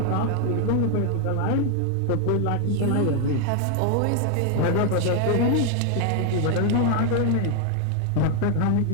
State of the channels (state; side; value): different; both; correlation 0.01